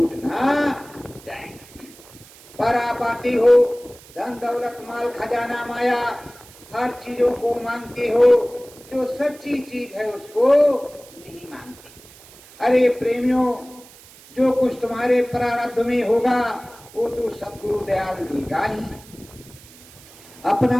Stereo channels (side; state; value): right; noise; hiss, 22 dB below the sound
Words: ना जाएं। पर आप आते हो, धन दौलत माल खजाना माया हर चीजों को मांगते हो, जो सच्ची चीज है उसको नहीं मांगते। अरे प्रेमियों, जो कुछ तुम्हारे प्रारब्ध में होगा वो तो सदगुरु दयाल देगा ही,